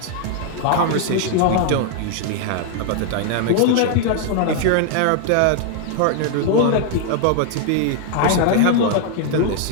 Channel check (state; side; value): different; both; correlation 0.00